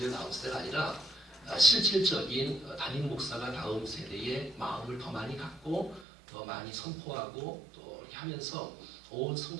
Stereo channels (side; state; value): left; drops out; at 6.1 s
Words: 아니라 실질적인 담임 목사가 다음 세대의 마음을 더 많이 갖고 더 많이 선포하고 또 이렇게 하면서 온